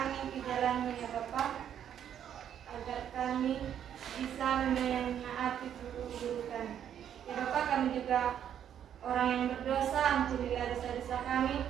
di jalanmu ya Bapak, agar kami bisa menaati guru-guru kami. Ya Bapak, kami juga orang yang berdosa, ampunilah dosa-dosa kami,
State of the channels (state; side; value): quieter; left; 9.5 dB